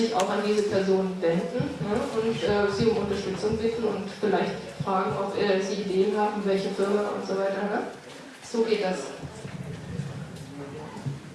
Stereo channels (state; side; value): identical; both; correlation 1.00